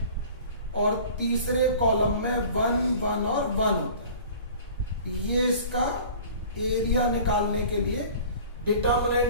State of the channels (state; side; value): inverted; both; correlation -0.44